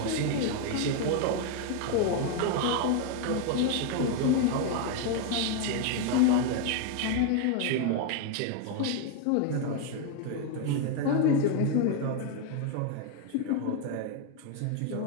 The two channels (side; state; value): both; different; correlation 0.01